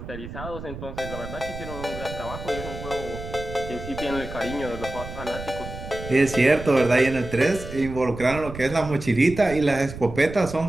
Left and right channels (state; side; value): noise; right; rumble, 11 dB below the sound